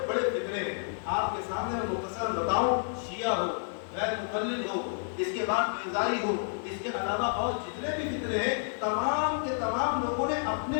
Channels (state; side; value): silent; right; digital silence